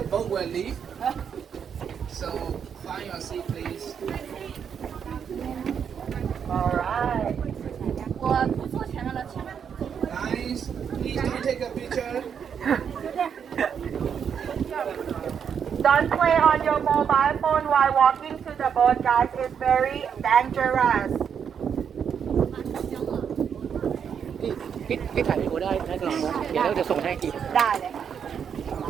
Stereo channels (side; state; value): left; quieter; 7.5 dB